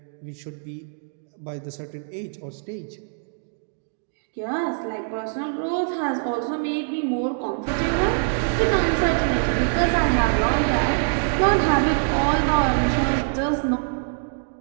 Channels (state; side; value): silent; left; 63 dB below the other